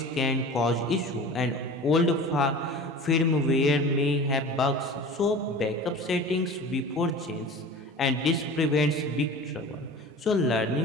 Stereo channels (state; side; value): normal; both; correlation 0.38